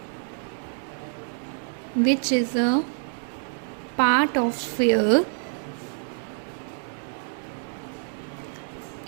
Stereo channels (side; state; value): left; silent; 59 dB below the other